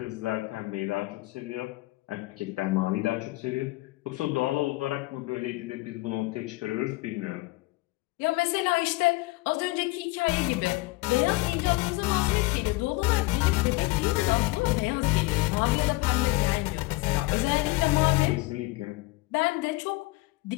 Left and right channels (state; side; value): quieter; right; 21.8 dB